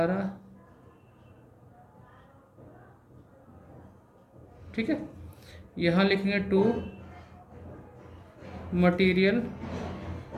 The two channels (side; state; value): both; identical; correlation 1.00